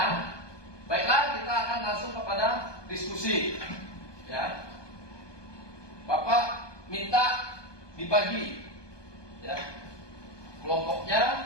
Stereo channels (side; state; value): right; late; 1.2 ms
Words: Baiklah, kita akan langsung kepada diskusi. Ya. Bapak minta dibagi ya